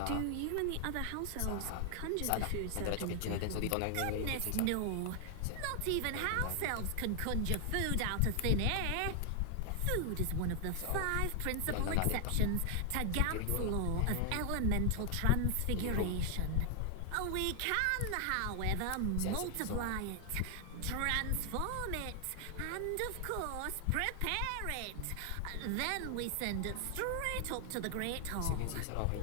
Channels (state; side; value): different; both; correlation 0.00